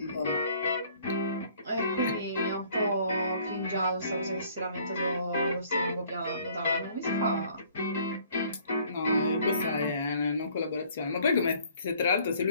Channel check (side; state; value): both; inverted; correlation -0.58